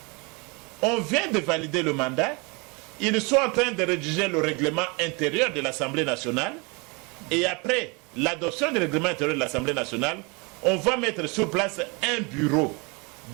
On vient de valider le mandat, ils sont en train de rédiger le règlement intérieur de l'Assemblée nationale, et après l'adoption du règlement intérieur de l'Assemblée nationale, on va mettre sur place un bureau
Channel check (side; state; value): left; quieter; 29.7 dB